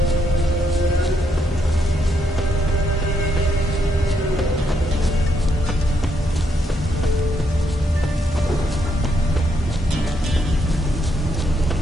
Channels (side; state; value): both; normal; correlation 0.77